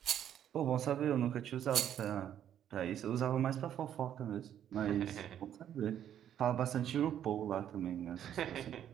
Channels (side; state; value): left; quieter; 10.2 dB